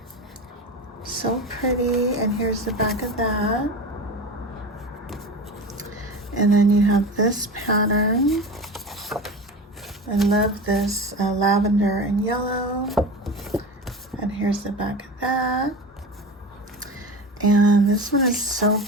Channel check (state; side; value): normal; both; correlation 0.29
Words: So pretty. And here's the back of that. And then you have this pattern. I love this lavender and yellow. And here's the back of that. And this one is so